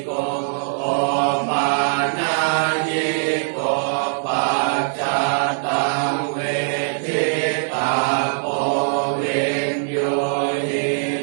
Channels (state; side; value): silent; left; digital silence